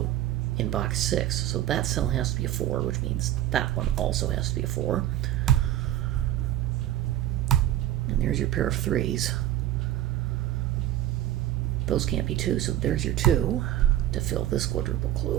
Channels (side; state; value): left; quieter; 13.0 dB